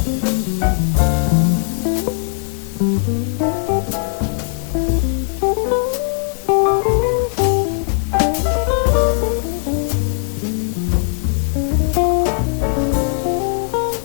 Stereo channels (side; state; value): right; silent; 67 dB below the other